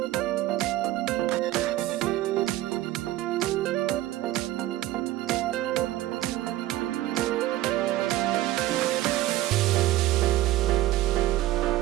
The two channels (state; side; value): quieter; left; 15.6 dB